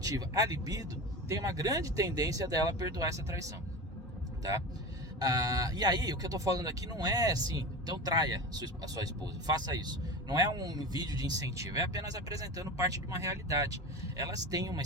a libido, tem uma grande tendência dela perdoar essa traição, tá? E aí, o que eu tô falando aqui não é assim, então traia a sua esposa, faça isso. Não é um vídeo de incentivo, é apenas apresentando parte de uma realidade. Elas têm uma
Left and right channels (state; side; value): normal; both; correlation 0.28